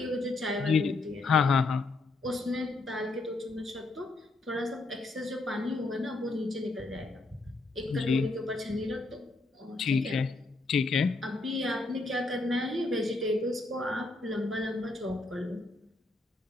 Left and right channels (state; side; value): quieter; right; 3.2 dB